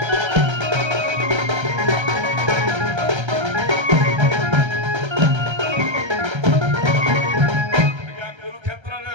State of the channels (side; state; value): left; late; 1.3 ms